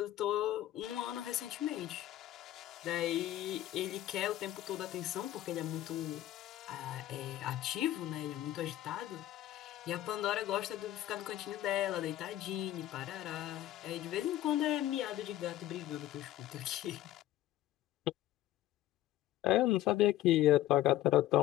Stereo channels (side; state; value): right; quieter; 13.8 dB